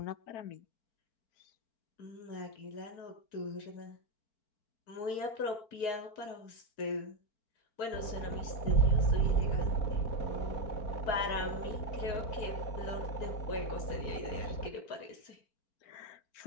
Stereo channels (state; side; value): late; right; 4.4 ms